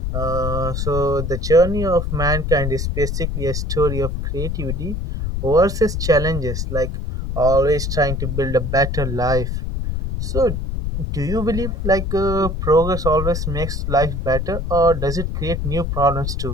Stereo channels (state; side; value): noise; left; rumble, 2 dB below the sound